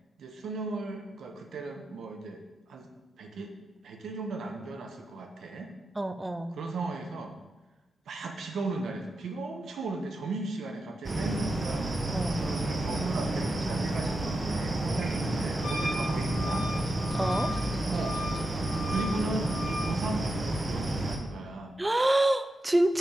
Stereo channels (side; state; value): both; normal; correlation 0.88